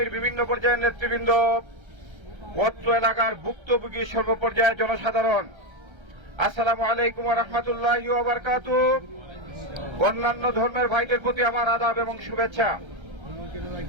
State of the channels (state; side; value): late; left; 1.3 ms